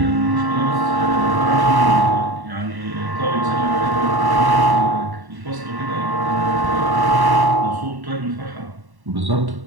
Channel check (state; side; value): late; left; 1.1 ms